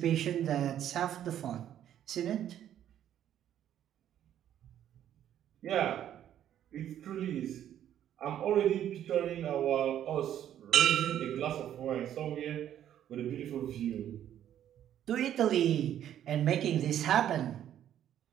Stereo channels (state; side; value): quieter; left; 10.8 dB